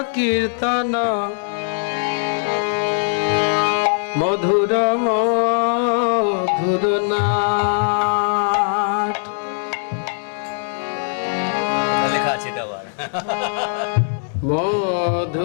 কীর্তন মধুর মধুর নাট। লেখা আছে এটা আবার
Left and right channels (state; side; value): silent; right; digital silence